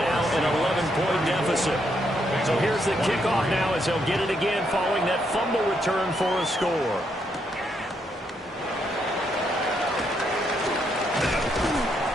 an 11-point deficit. So here's the kickoff now as they'll get it again following that fumble return for a score.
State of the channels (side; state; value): both; normal; correlation 0.77